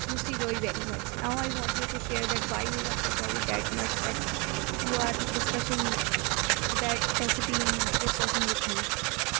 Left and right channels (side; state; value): left; quieter; 29.1 dB